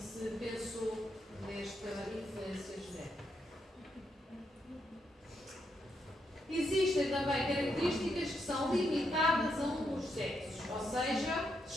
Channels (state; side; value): normal; both; correlation 0.80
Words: pensou nesta influência genética. Existem também características que são limitadas a um dos sexos, ou seja,